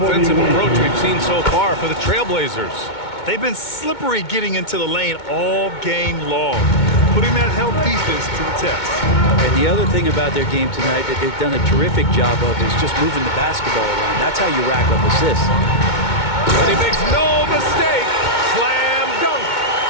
approach we've seen so far for the Trailblazers? They've been slippery getting into the lane all game long, putting that help defense to the test. And the other thing about their game tonight that they've done a terrific job of is just moving the basketball around. That's how you rack up assists. And he makes no mistake. Slam dunk.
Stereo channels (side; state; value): right; late; 2.2 ms